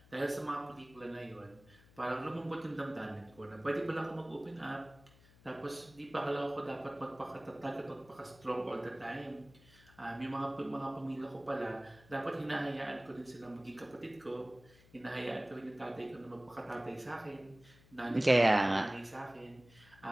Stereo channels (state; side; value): noise; left; hum, 25 dB below the sound